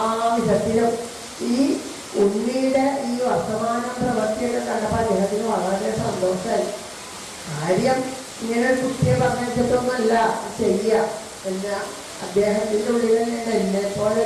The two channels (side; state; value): both; identical; correlation 1.00